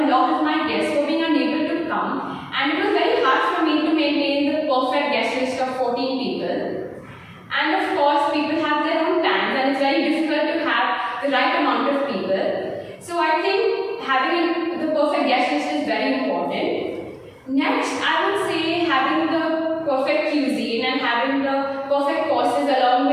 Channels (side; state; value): both; identical; correlation 1.00